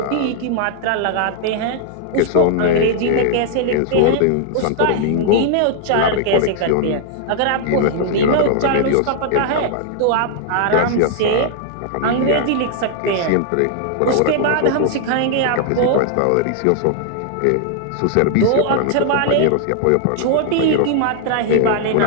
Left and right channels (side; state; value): both; different; correlation -0.01